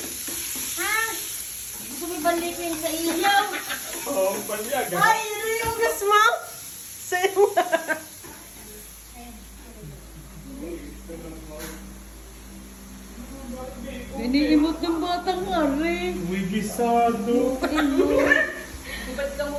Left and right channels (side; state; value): both; identical; correlation 1.00